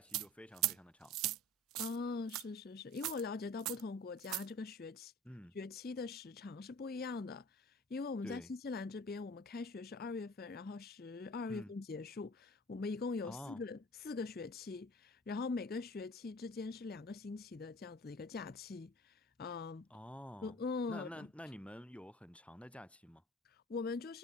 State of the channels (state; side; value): normal; both; correlation 0.43